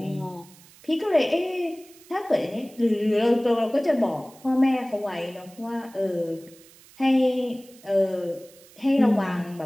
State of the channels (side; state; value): right; noise; hiss, 24 dB below the sound